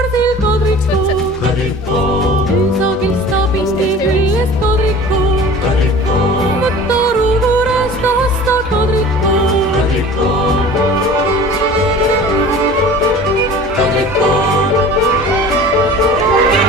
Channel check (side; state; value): both; normal; correlation 0.41